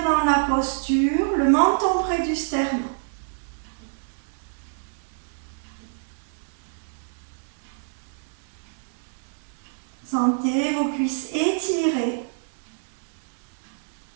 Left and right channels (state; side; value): silent; left; 60 dB below the other